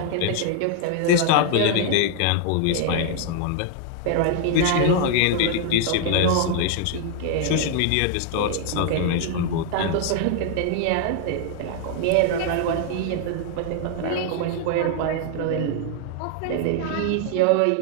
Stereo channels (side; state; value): both; different; correlation 0.00